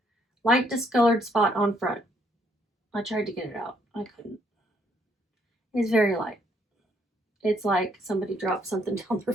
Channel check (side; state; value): both; normal; correlation 0.70